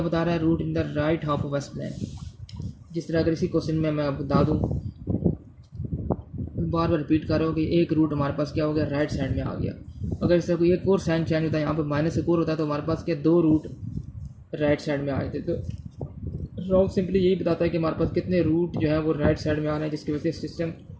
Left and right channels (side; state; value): both; identical; correlation 1.00